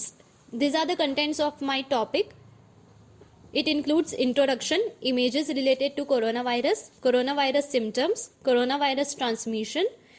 These are the contents of my topic. It includes introduction, images related to coronavirus, coronavirus symptoms, coronavirus transmission,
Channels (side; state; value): both; identical; correlation 1.00